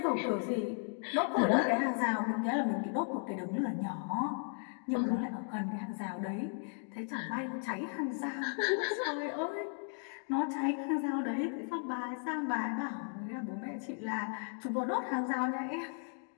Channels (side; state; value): right; silent; 54 dB below the other